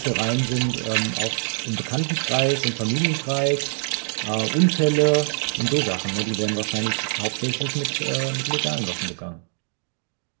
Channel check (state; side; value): silent; left; digital silence